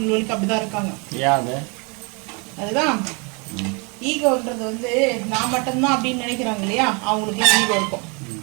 அப்படிதான் இருக்காங்க. அதுதான் ஈகோன்றது வந்து நான் மட்டும்தான் அப்படின்னு நினைக்கிறாங்க இல்லையா, அவங்களுக்கு ஈகோ இருக்கும்.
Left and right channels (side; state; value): left; quieter; 31.5 dB